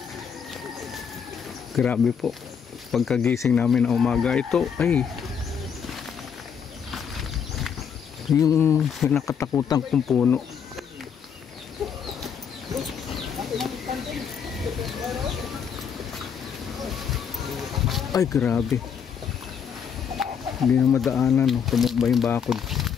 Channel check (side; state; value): right; quieter; 7.2 dB